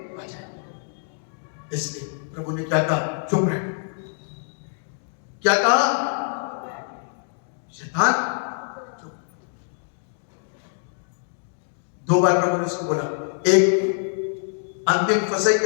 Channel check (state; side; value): silent; right; 56 dB below the other